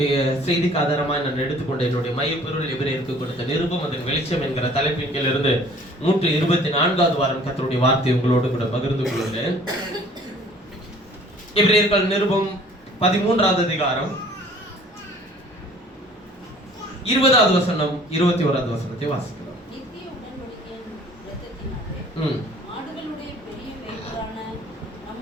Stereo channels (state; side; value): normal; both; correlation 0.52